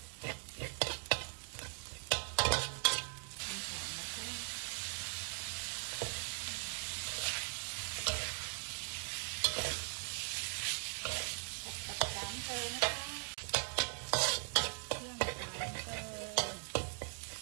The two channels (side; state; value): left; silent; 51 dB below the other